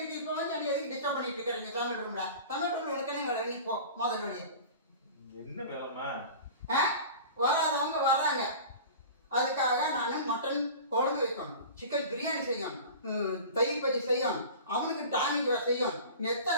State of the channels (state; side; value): inverted; both; correlation -0.37